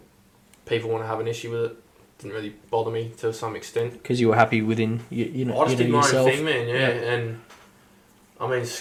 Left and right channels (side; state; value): both; identical; correlation 1.00